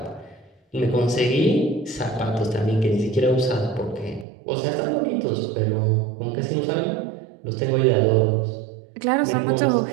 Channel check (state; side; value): drops out; left; at 4.2 s